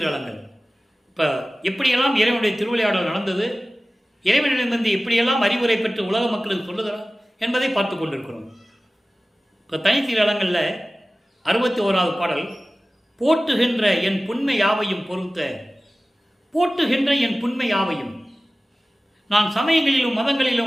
இப்போ எப்படியெல்லாம் இறைவனுடைய திருவிளையாடல் நடந்தது, இறைவனிடமிருந்து எப்படியெல்லாம் அறிவுரை பெற்று உலக மக்களுக்கு சொல்லுகிறார் என்பதை பார்த்து கொண்டிருக்கிறோம். இப்போ தனித்திருளங்களில் 61வது பாடல், போற்றுகின்ற என் புண்மை யாவையும் பொறுத்த போட்டுகின்ற என் புண்மை யாவையும். நான் சமயங்களிலும்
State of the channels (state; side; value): normal; both; correlation 0.97